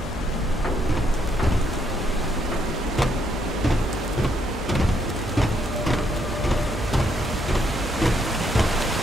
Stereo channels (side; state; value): both; normal; correlation 0.73